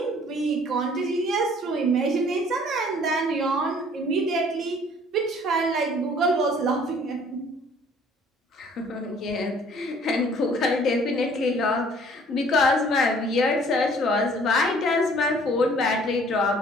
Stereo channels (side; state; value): both; normal; correlation 0.55